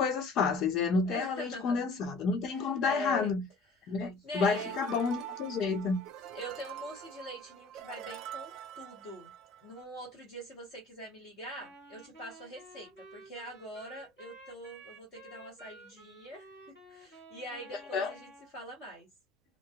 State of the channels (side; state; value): right; quieter; 3.6 dB